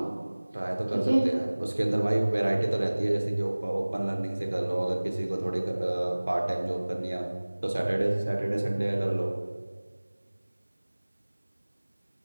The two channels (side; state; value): both; inverted; correlation -1.00